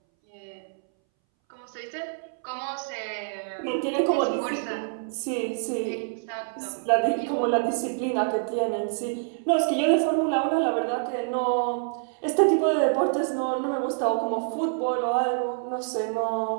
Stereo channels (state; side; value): silent; left; 60 dB below the other